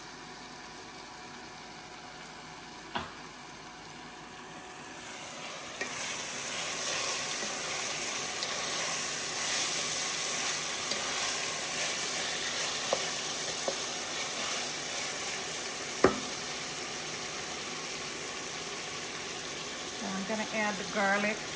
So I'm going to add the garlic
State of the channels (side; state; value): both; identical; correlation 1.00